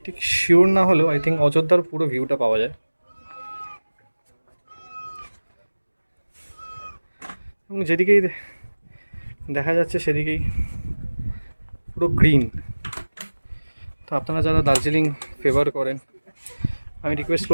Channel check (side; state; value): both; inverted; correlation -1.00